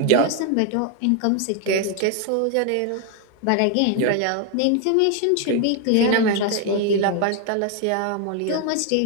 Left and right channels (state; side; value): different; both; correlation 0.01